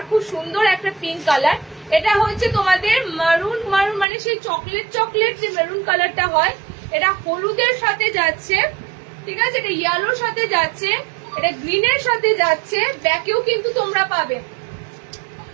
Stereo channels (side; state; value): left; drops out; at 4.0 s